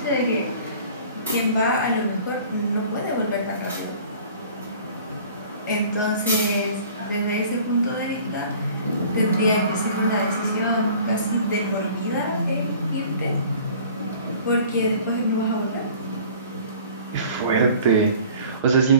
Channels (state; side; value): inverted; both; correlation -0.48